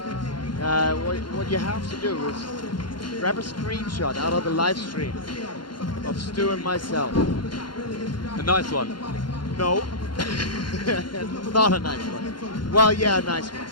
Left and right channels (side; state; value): right; late; 0.72 ms